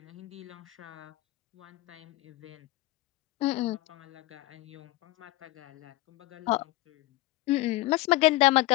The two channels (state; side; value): quieter; right; 18.6 dB